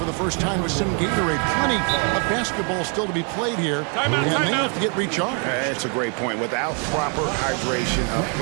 the first time with some Gatorade. Plenty of basketball still to be played here, and they have to get recharged. That's a great point. Without proper hydration, a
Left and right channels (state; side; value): quieter; left; 38.5 dB